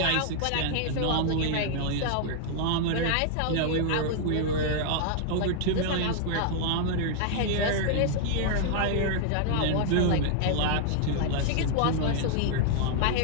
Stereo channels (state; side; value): different; both; correlation -0.01